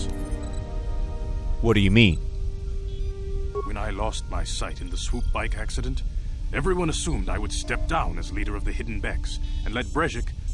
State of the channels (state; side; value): identical; both; correlation 1.00